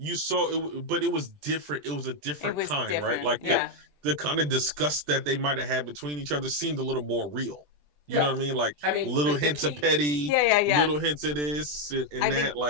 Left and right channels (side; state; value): left; late; 20 ms